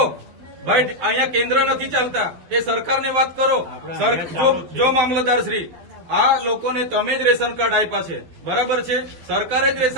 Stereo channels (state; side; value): late; left; 12 ms